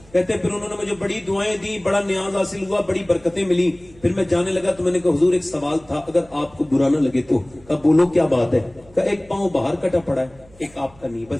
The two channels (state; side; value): noise; right; hum, 26 dB below the sound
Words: کہتے پھر انہوں نے مجھے بڑی دعائیں دی, بڑا نیاز حاصل ہوا, بڑی برکتیں ملی. پھر میں جانے لگا تو میں نے کہا حضور ایک سوال تھا, اگر آپ کو برا نہ لگے تو. کہا بولو کیا بات ہے؟ کہا ایک پاؤں باہر کٹا پڑا ہے, ایک آپ کا نہیں,